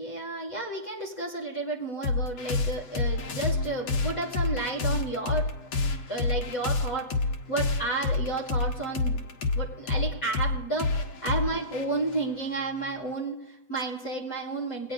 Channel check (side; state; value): right; late; 8.1 ms